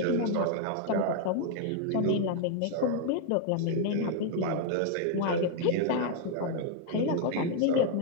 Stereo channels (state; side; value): different; both; correlation 0.00